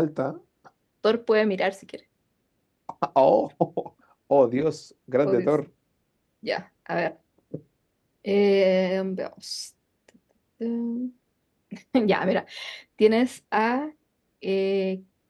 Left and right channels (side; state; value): both; identical; correlation 1.00